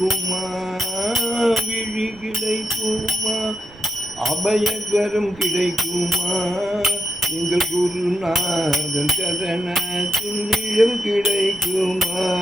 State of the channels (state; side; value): noise; right; rumble, 23 dB below the sound